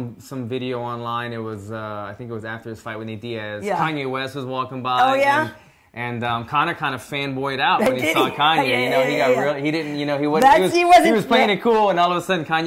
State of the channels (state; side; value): identical; both; correlation 1.00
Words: video online. It was I think it was after his fight with Nate Diaz. Yeah. Kanye West was walking by. Oh yeah. And Conor kind of fanboyed out when he saw Kanye. He got really, he didn't, he was playing it cool, and all of a sudden